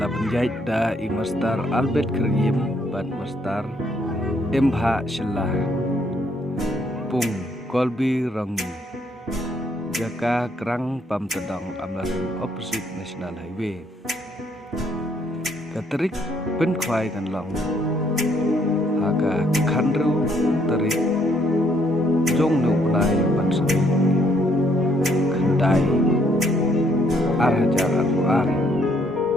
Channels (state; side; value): normal; both; correlation 0.69